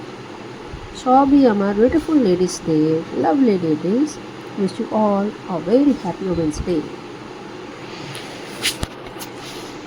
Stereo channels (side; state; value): both; identical; correlation 1.00